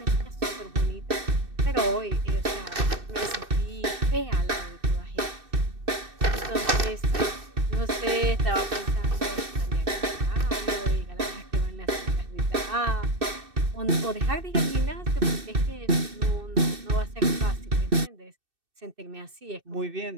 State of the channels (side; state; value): left; late; 2.6 ms